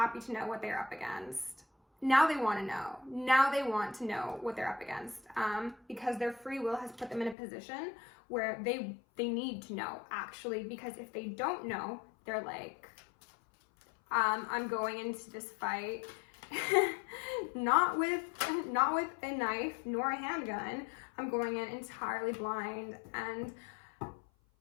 to know what they're up against. Now they want to know. Now they want to know what they're up against, because their free will has put them in a position where they need to know, actually, because if they don't know, they're like, I'm going into this fight not with a knife nor a handgun. I'm going in entirely blind, and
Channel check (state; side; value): drops out; right; at 7.4 s